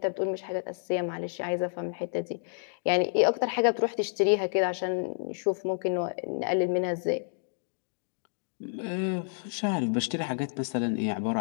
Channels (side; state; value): right; silent; digital silence